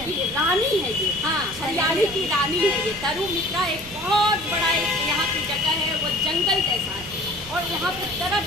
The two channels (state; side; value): noise; right; rumble, 17 dB below the sound